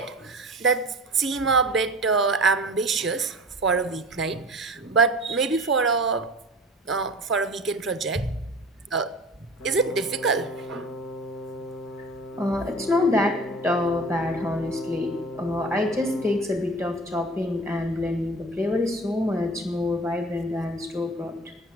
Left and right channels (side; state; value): both; normal; correlation 0.39